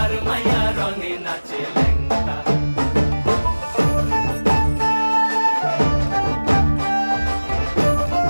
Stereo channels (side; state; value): both; inverted; correlation -1.00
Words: মাইয়া রণে নাচে ল্যাংটা।